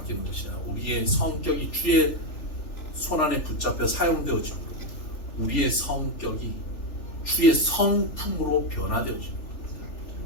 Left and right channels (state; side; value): late; right; 3.4 ms